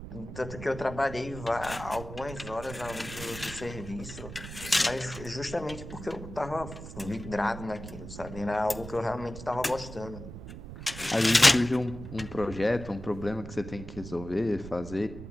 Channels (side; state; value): right; noise; rumble, 11 dB below the sound